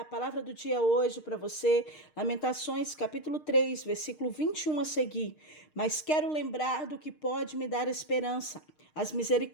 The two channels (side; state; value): right; late; 6.5 ms